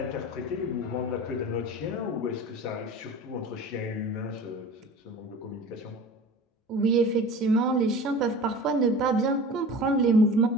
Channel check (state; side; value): normal; both; correlation 0.38